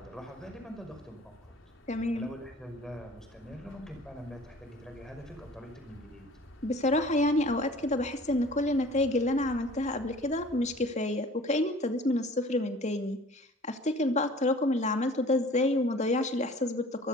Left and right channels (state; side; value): normal; both; correlation 0.47